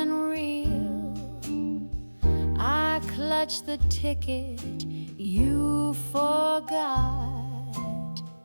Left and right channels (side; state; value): both; inverted; correlation -1.00